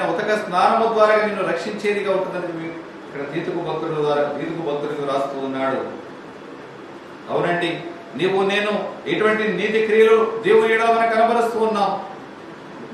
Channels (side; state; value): both; identical; correlation 1.00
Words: ఉతక స్నానము ద్వారా నిన్ను రక్షించేదిగా ఉంటుందని ఇక్కడ తీతుకు భక్తుడికి రాస్తూ ఉన్నాడు. అవునండి, నీవు నేను ఎటువంటి నీతి క్రియలు దేవుని ఎడల మనం కనబరుస్తూ ఉన్నాం.